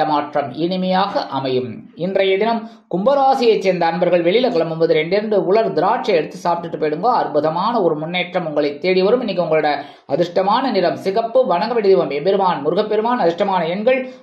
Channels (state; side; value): identical; both; correlation 1.00